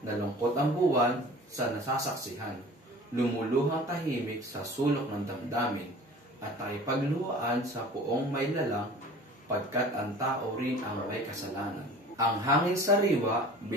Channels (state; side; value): normal; both; correlation 0.43